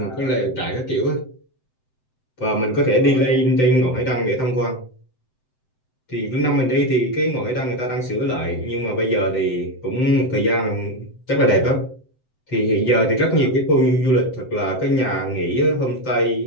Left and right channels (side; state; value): right; late; 7.8 ms